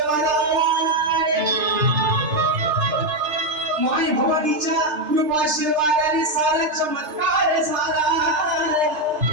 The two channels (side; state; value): left; late; 3.3 ms